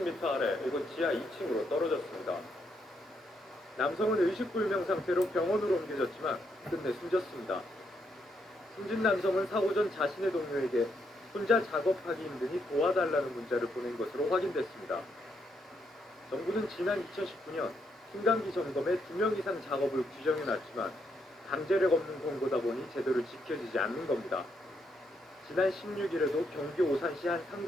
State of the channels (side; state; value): both; normal; correlation 0.77